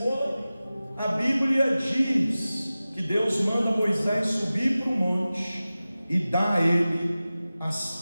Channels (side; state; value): both; inverted; correlation -0.96